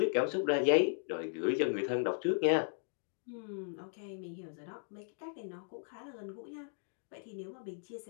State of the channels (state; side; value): silent; right; digital silence